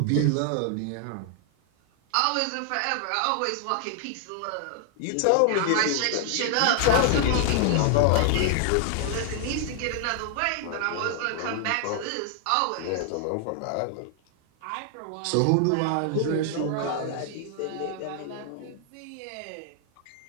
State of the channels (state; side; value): different; both; correlation 0.00